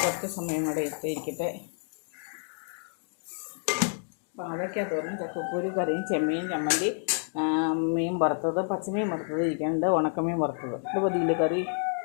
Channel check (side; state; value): right; silent; 59 dB below the other